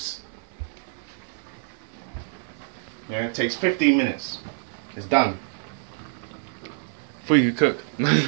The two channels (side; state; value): left; silent; 56 dB below the other